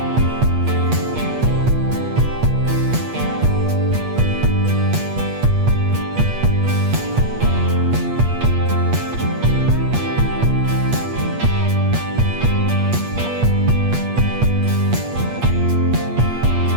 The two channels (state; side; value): late; left; 8.4 ms